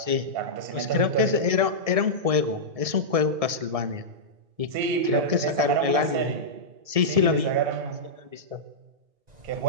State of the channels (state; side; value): late; left; 1.7 ms